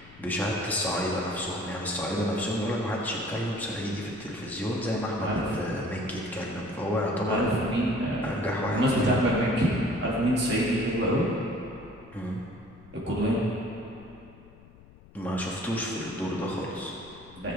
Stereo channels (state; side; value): noise; left; rumble, 22 dB below the sound